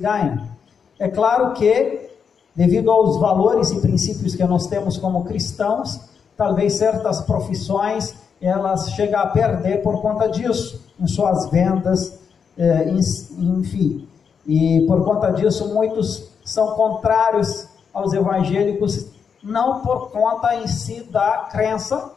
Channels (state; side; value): quieter; right; 6.5 dB